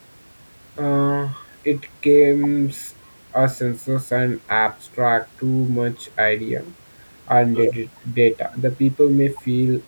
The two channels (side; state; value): both; inverted; correlation -1.00